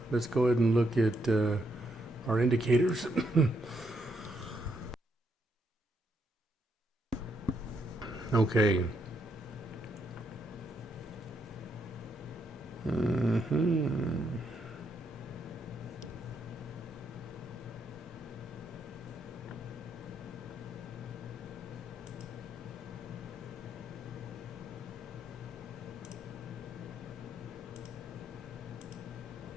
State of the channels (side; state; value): both; normal; correlation 0.77